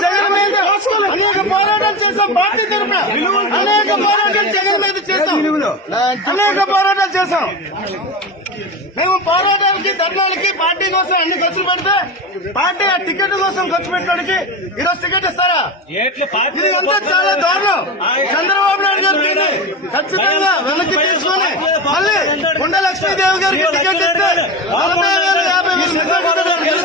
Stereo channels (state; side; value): normal; both; correlation 0.23